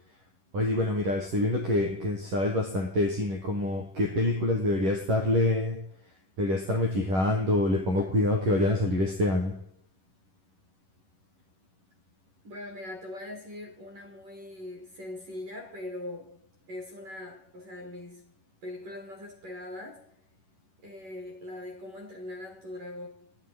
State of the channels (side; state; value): left; late; 11 ms